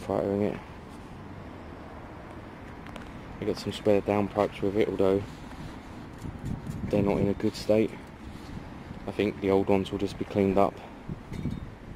fightering it. I got some spare downpipes with it, although they're not in a good state. I think the old ones will just be cleaned up.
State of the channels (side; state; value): both; identical; correlation 1.00